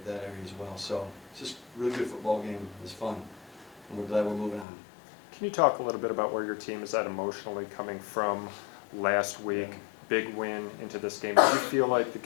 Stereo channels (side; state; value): right; drops out; at 4.7 s